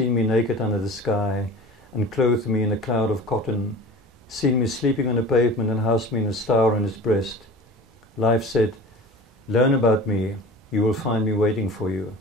me naked under the sky and clothed me in a cloud of cotton, seen me sleeping on the pavement and housed me in a star on its breast. Life said, learn about me, you will find me waiting for you.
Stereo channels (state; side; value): normal; both; correlation 0.39